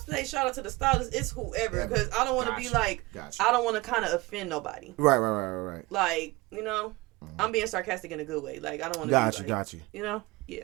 say shout out to the stylist, it's whoever, because I don't want to be like, Gotcha. I don't want to kind of offend nobody. Right. Like, I'm being sarcastic in a good way. Like, I don't want to be like, Got you. Yeah,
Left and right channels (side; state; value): left; quieter; 22.1 dB